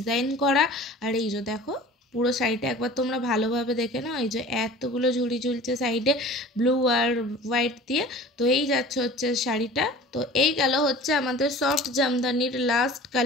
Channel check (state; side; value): normal; both; correlation 0.42